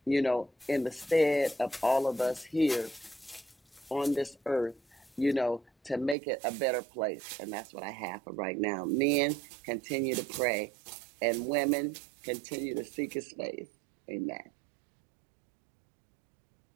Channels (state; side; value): drops out; left; at 6.2 s